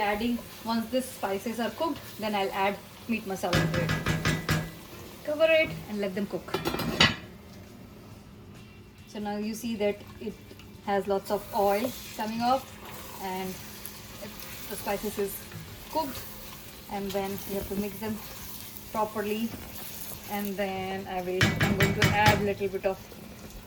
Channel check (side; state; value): both; identical; correlation 1.00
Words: once these spices are cooked, then I'll add meat masala to it. Cover it and let them cook. So now you see that it has lots of oil coming off, and the spices is cooked, and then you have to mix them properly, and then I'm going to add a little bit of